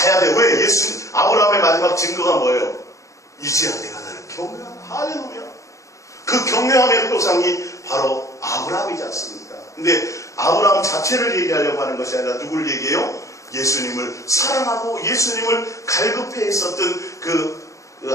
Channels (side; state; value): right; late; 0.15 ms